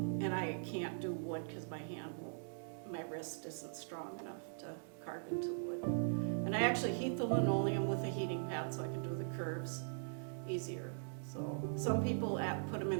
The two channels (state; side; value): silent; left; digital silence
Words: I can't do wood because my wrist isn't strong enough to carve into wood. And I actually heat the linoleum with a heating pad so I can do the curves easier. So some people put them in